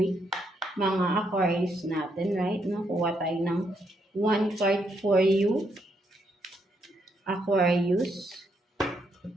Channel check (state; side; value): normal; both; correlation 0.76